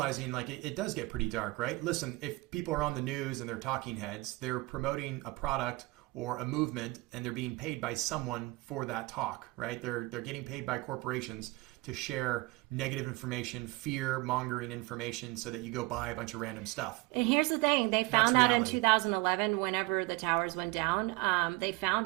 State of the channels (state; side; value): quieter; left; 23.3 dB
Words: like it does get pretty dark, right? Listen, if people are on the news and they're talking heads, they're promoting a product or a movement, and they're being paid by someone for that talk, right? They're getting paid by corporations to share negative information, fear-mongering information, so that you go buy a bunch of random stuff. And here's the thing. They found out in 2011, whenever the towers went down, they